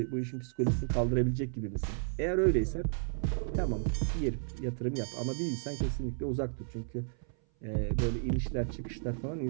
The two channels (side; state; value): left; silent; 56 dB below the other